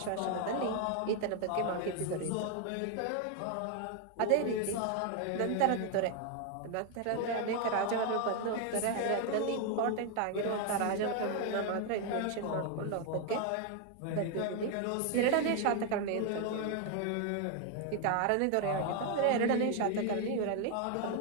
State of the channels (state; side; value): different; both; correlation 0.01